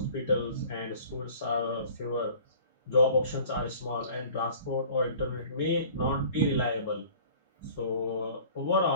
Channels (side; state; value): both; inverted; correlation -0.48